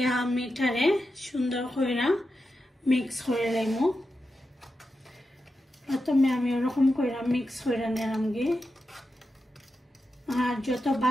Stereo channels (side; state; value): both; normal; correlation 0.89